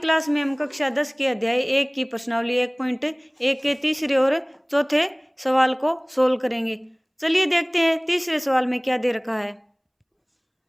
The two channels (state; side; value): identical; both; correlation 1.00